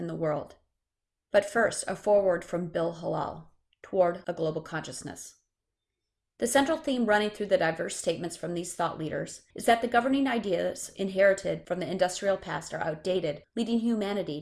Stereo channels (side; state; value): both; identical; correlation 1.00